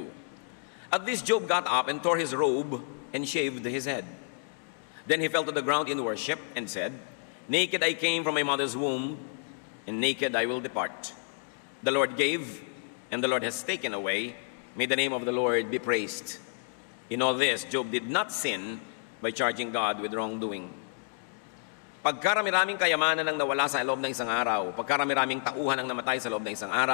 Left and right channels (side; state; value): right; silent; digital silence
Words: At this Job got up and tore his robe and shaved his head. Then he fell to the ground in worship and said, naked I came from my mother's womb, and naked I will depart. The Lord gave, and the Lord has taken away. May the name of the Lord be praised. In all this, Job did not sin by charging God with wrongdoing. Pagkarami-raming kayamanan ang nawala sa loob ng isang araw, pagkarami-raming tauhan ang namatay sa loob ng isang